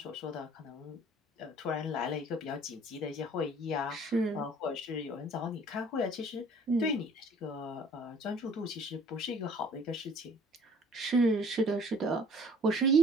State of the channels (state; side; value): normal; both; correlation 0.53